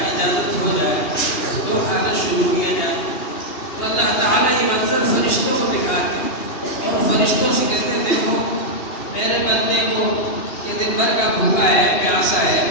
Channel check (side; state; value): right; late; 2.8 ms